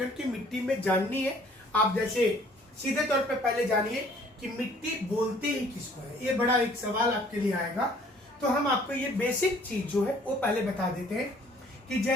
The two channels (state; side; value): normal; both; correlation 0.57